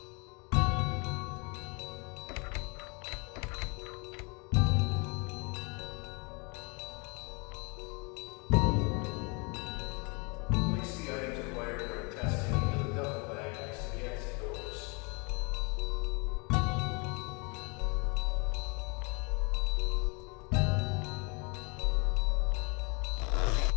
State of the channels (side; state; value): right; quieter; 31.4 dB